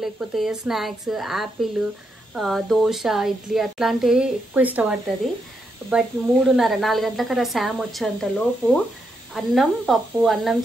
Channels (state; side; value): normal; both; correlation 0.81